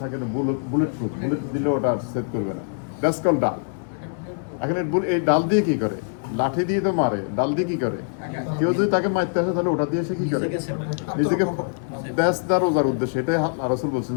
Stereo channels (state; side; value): silent; right; 62 dB below the other